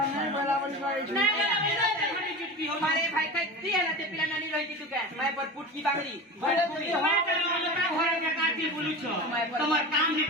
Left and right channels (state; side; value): normal; both; correlation 0.29